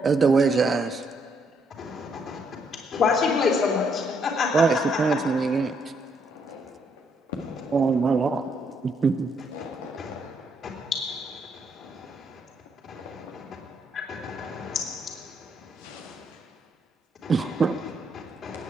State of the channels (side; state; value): both; normal; correlation 0.73